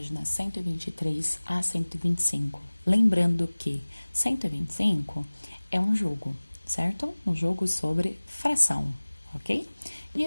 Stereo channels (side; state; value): both; inverted; correlation -1.00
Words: 123 a 125. Lembrando que 125 é um jogo, certo? Um jogo sobre fração, ok? E